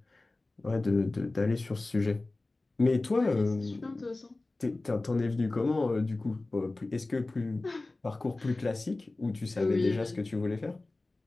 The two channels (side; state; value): right; quieter; 3.1 dB